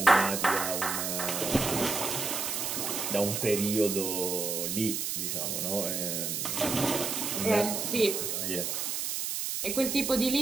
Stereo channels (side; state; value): right; noise; hiss, 2 dB below the sound